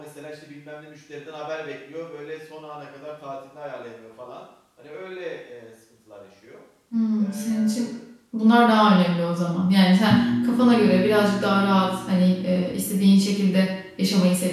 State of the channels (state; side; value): identical; both; correlation 1.00